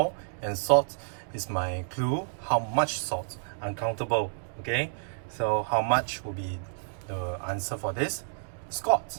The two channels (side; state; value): left; silent; digital silence